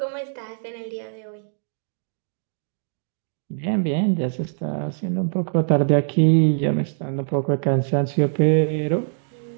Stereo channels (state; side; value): silent; left; digital silence